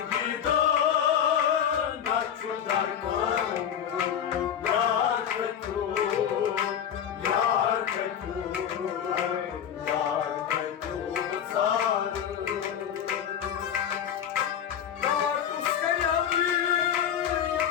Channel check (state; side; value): quieter; right; 9.0 dB